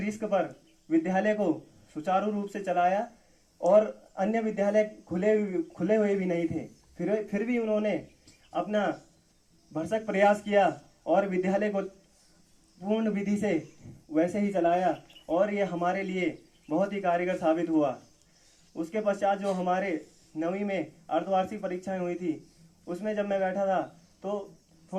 पर विद्यालय को सुचारू रूप से चलाया, और अन्य विद्यालय खुले हुए भी नहीं थे, फिर भी उन्होंने अपना भरसक प्रयास किया और विद्यालय को पूर्ण विधि से वैसे ही चलाया, और ये हमारे लिए बहुत ही कारगर साबित हुआ। उसके पश्चात जो हमारे 9वीं में अर्धवार्षिक परीक्षाएं हुई थी, उसमें जब मैं बैठा था तो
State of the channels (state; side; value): identical; both; correlation 1.00